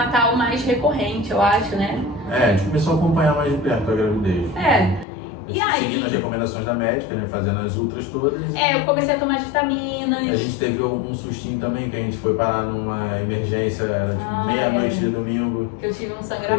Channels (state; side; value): drops out; right; at 5.1 s